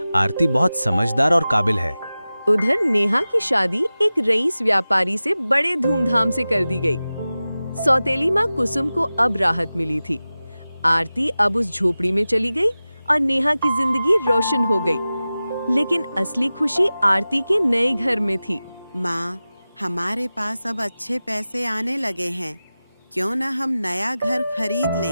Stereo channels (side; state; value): both; inverted; correlation -0.96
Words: आरती बहुत समझदार और काबिल है। उधर नेहा की शादी एक रईस व्यापारी से बड़े धूमधाम से कर दी गई। सौतेली माँ कुसुम को अब राहत मिली थी। आरती अब उस झोपड़ी में चली गई और नेहा की जिंदगी रोशन हो गई। लेकिन असली खुशी आरती के नए घर में थी। माँ, हमारे पास अब अच्छे पैसे आने लगे हैं, क्यों न हम नया घर खरीद